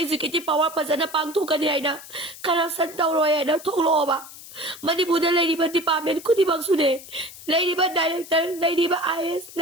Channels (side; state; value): left; noise; hiss, 16 dB below the sound